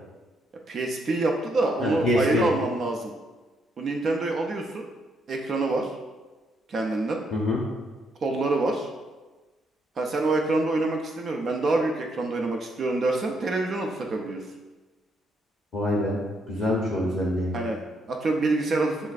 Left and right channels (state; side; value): normal; both; correlation 0.76